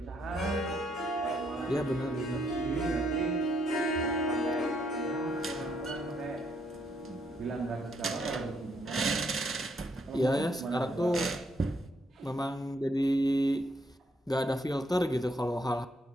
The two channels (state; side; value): normal; both; correlation 0.73